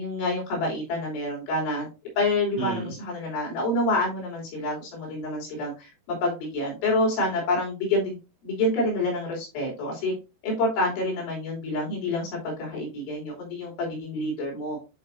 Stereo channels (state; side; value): normal; both; correlation -0.05